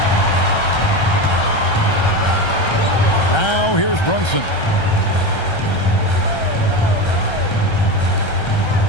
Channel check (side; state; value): right; late; 1.3 ms